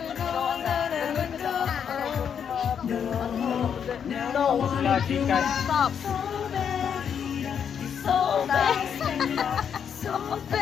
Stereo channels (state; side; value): quieter; right; 7.8 dB